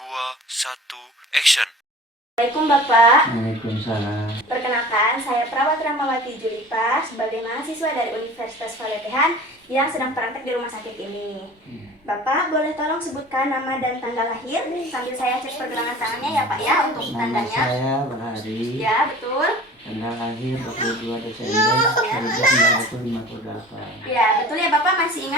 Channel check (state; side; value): normal; both; correlation 0.42